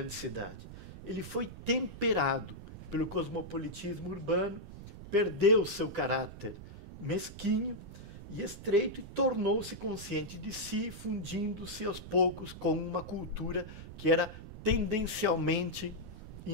cidade. Ele foi temperado pelo cosmopolitismo urbano, perdeu seu caráter mesquinho e estreito e tornou-se consciente de si, fundindo-se aos poucos com uma cultura que era tendencialmente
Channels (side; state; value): right; noise; rumble, 13 dB below the sound